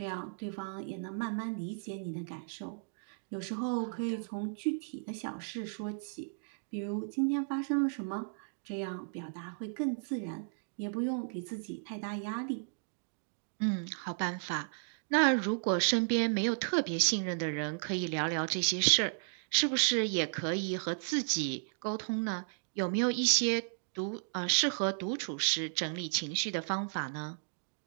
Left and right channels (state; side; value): silent; left; digital silence